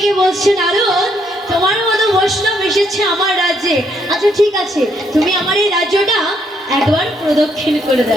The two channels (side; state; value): both; normal; correlation 0.72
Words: বলছে, নারদ, তোমার মতো বৈষ্ণব এসেছে আমার রাজ্যে, আচ্ছা ঠিক আছে, তুমি আমার এই রাজ্যটা একবার প্রদক্ষিণ করে